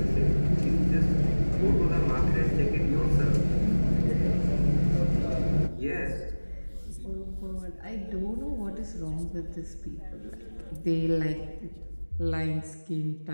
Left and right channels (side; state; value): both; inverted; correlation -1.00